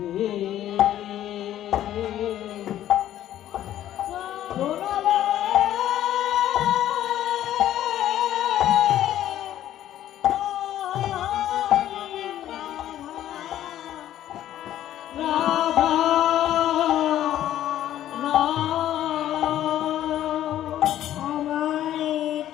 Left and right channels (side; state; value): right; quieter; 12.3 dB